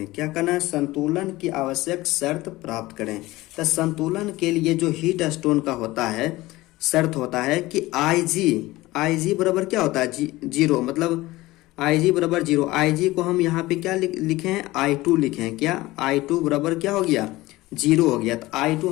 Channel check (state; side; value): quieter; right; 18.9 dB